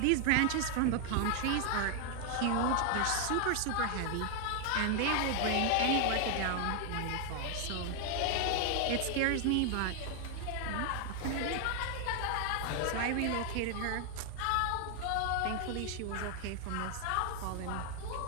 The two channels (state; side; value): different; both; correlation 0.00